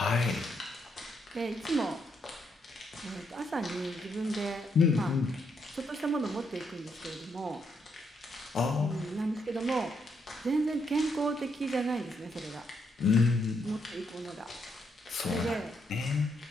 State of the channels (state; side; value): normal; both; correlation 0.77